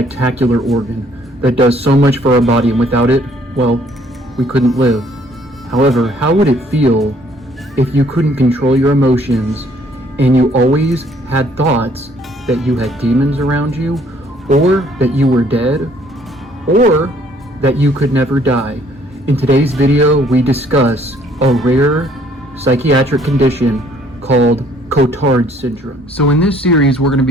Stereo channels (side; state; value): both; normal; correlation 0.62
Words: organ that does so much for our body, and without it, well, we couldn't live. However, how would it feel if you couldn't control your emotions and you always had thoughts that you had demons around you, or that you were dead, or that you could never die? In today's video, we discuss a rare psychiatric condition called Cotard syndrome. So in this series, we're going to